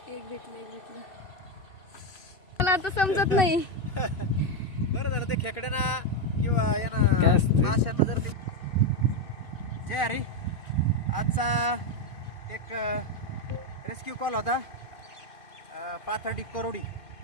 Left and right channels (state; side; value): late; right; 2.6 ms